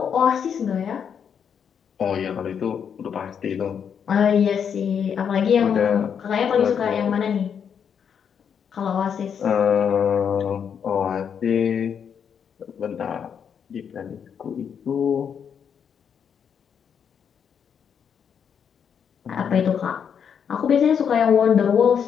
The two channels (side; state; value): right; quieter; 7.5 dB